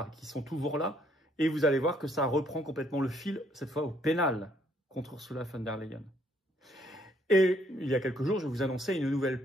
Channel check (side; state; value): both; normal; correlation 0.67